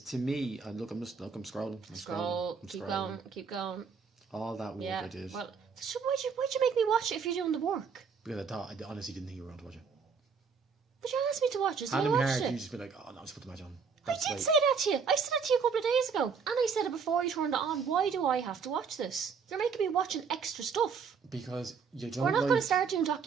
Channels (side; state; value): left; quieter; 5.8 dB